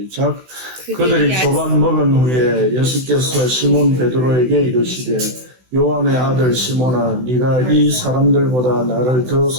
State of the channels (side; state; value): left; late; 16 ms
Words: 그들이 조반 먹은 후에 예수께서 시몬 베드로에게 이르시되, 요한의 아들 시몬아, 네가 이 사람들보다 나를 더